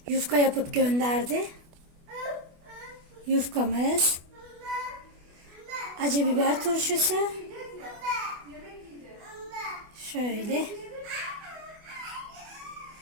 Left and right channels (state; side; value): late; left; 24 ms